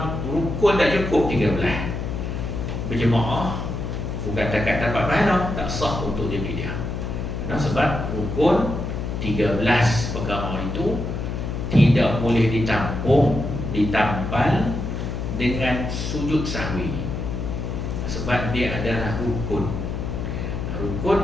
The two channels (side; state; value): left; noise; hum, 4 dB below the sound